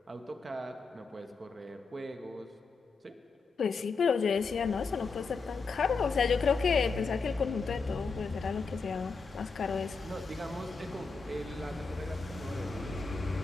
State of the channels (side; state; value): right; quieter; 4.5 dB